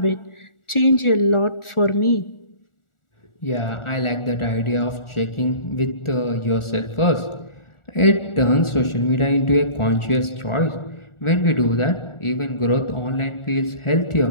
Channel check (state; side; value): late; right; 1.4 ms